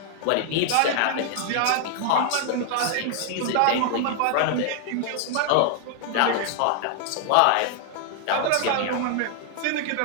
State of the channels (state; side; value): different; both; correlation 0.00